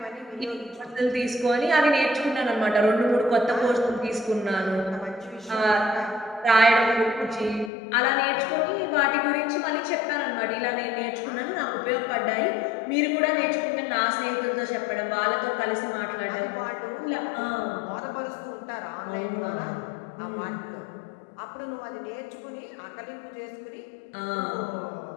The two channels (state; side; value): drops out; right; at 7.7 s